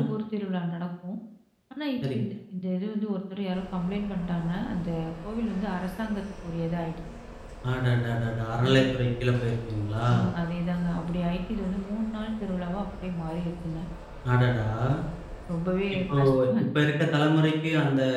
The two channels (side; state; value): both; identical; correlation 1.00